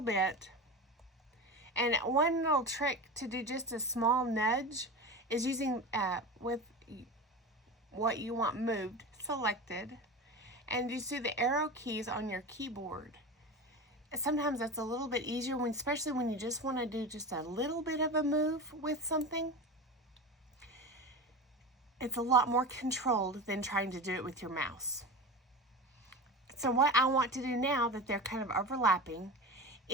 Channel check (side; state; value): both; normal; correlation 0.27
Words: bit. And one little trick to do just a small nudge is using with what you want moved selected, and you see the arrow keys on your keyboard. Sometimes that's a little bit easier, especially when you just want to do just a little bit of a move with something. It's a lot more controlled than trying to do it with your mouse. So what I want to do now that they're kind of overlapping